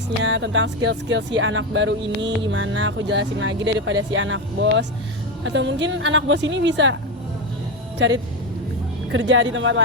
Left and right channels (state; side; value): normal; both; correlation 0.14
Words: tentang skill-skill si anak baru ini gimana, aku jelasin lagi daripada si anak bos, atau mungkin anak bos ini bisa cari kerja di tempat